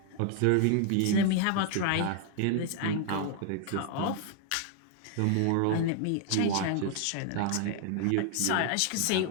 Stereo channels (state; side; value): different; both; correlation 0.00